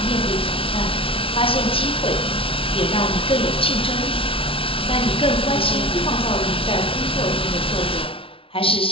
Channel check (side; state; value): right; late; 0.26 ms